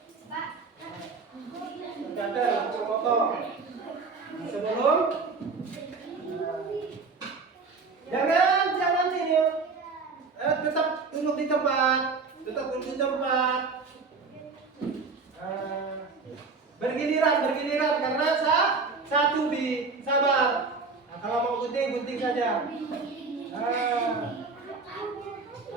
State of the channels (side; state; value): left; quieter; 4.5 dB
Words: Kader langsung potong. Sebelum jangan ini tetap duduk di tempat. Bergiliran karena satu sabar. Nah, kalau mau gunting saja.